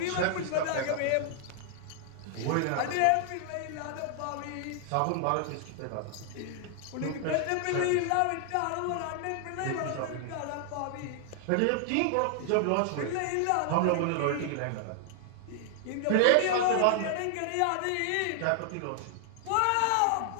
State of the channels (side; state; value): both; different; correlation 0.00